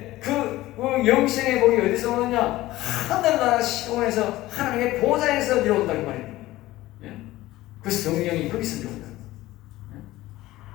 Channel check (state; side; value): quieter; right; 17.0 dB